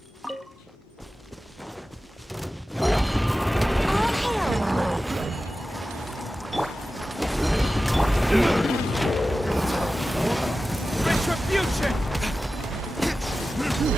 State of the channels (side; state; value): both; normal; correlation 0.94